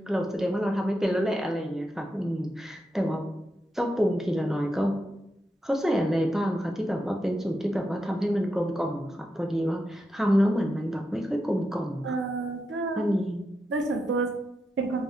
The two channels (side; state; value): both; normal; correlation 0.86